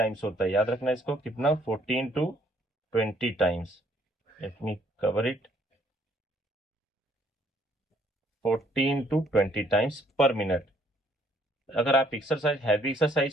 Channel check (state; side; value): normal; both; correlation 0.65